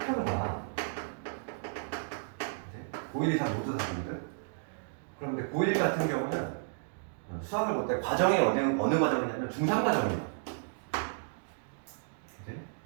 봐. 고1, 2, 3 모두 다 보거든. 그런데 고1 같은 경우는 수학을 볼 때 과정이 어느 과정이냐면 중3 과정이야.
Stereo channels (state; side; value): silent; left; digital silence